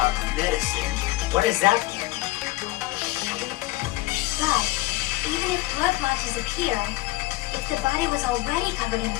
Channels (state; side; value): quieter; right; 18.7 dB